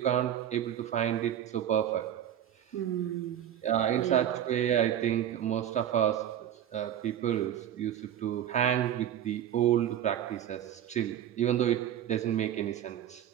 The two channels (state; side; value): quieter; left; 10.5 dB